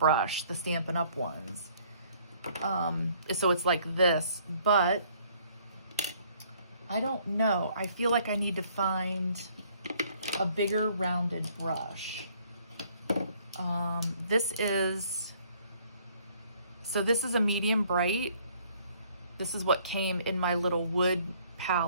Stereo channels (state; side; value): inverted; both; correlation -0.61